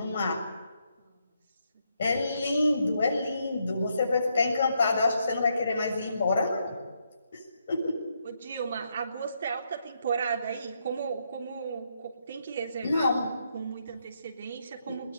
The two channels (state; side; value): inverted; both; correlation -0.78